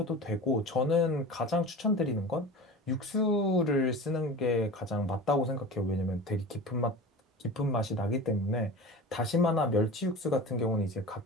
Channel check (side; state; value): both; normal; correlation 0.33